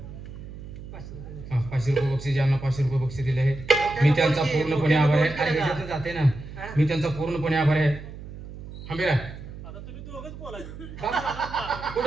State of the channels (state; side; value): noise; right; hum, 13 dB below the sound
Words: 500 रुपये बक्षीस ज्यांना 500 रुपये बक्षीस दिले आहे मी त्यांचा पूर्णपणे आभार आहे अरे ह्याच्यातनं जाते ना मी त्यांचा पूर्णपणे आभार आहे हंबीरा आता तुम्ही दोघंच बोलायचं